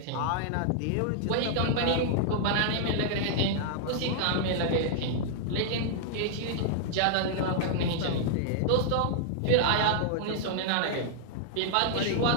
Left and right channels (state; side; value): different; both; correlation -0.01